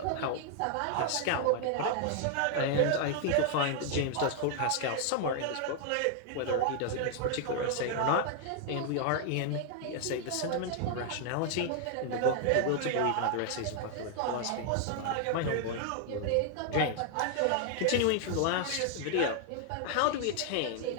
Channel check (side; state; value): both; different; correlation 0.00